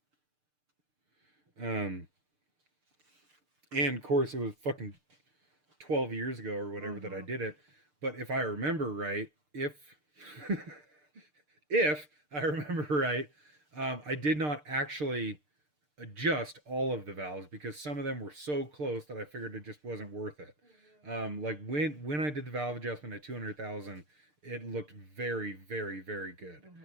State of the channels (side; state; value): left; late; 6.7 ms